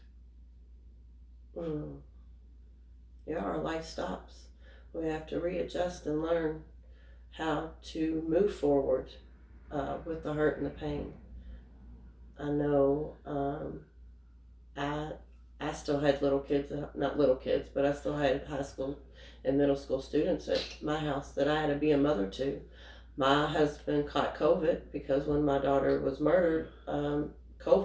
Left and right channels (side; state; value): both; identical; correlation 1.00